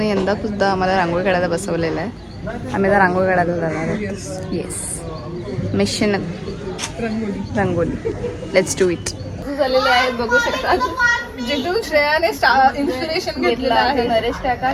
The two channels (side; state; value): both; identical; correlation 1.00